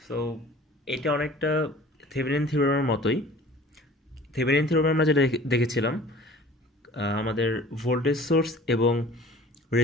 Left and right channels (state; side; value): normal; both; correlation 0.47